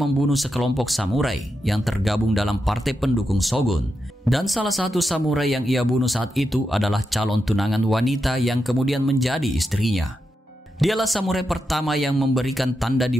sekelompok samurai yang tergabung dalam partai pendukung Shogun, dan salah satu samurai yang ia bunuh saat itu adalah calon tunangan wanita yang kemudian menjadi istrinya. Dialah samurai pertama yang memberikan tanda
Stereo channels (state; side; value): normal; both; correlation 0.87